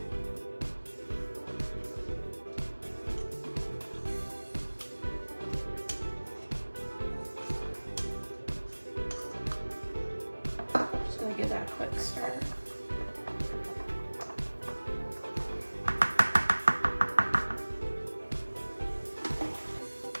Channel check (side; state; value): both; inverted; correlation -1.00